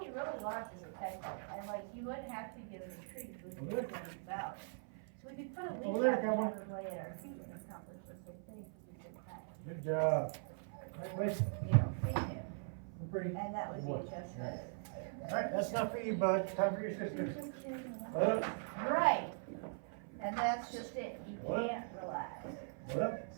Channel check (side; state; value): left; silent; 50 dB below the other